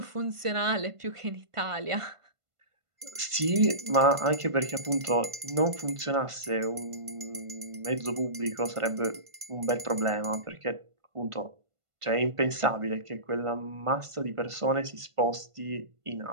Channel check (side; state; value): left; late; 1.5 ms